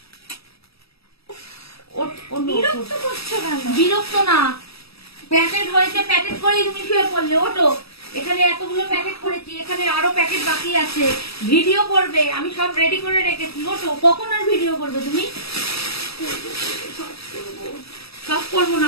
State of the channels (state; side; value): late; right; 0.77 ms